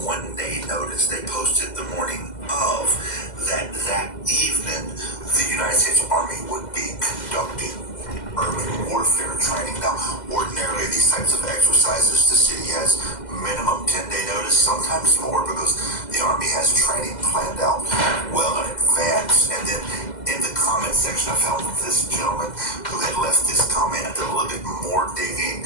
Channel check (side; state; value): right; late; 2.0 ms